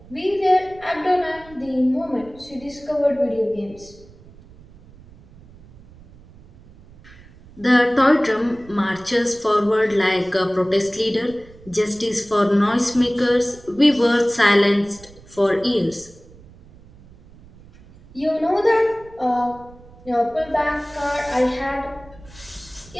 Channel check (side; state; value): right; noise; rumble, 23 dB below the sound